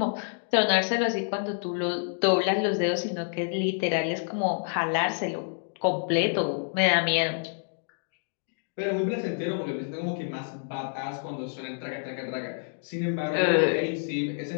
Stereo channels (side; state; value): right; silent; digital silence